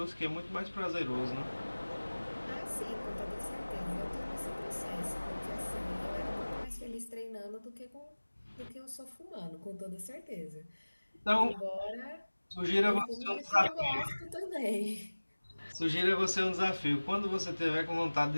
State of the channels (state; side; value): inverted; both; correlation -1.00